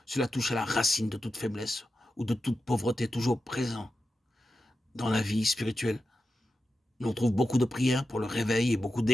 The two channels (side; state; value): both; normal; correlation 0.91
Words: Cela touche à la racine de toute faiblesse ou de toute pauvreté toujours présent dans la vie spirituelle. On trouve beaucoup de prières pour le réveil et beaucoup